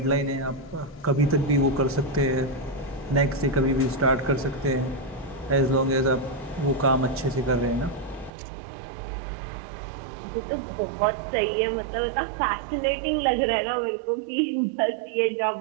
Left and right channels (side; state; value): left; drops out; at 8.3 s